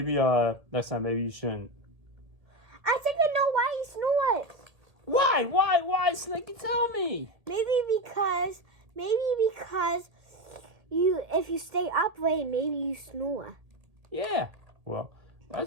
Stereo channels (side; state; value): left; late; 1.8 ms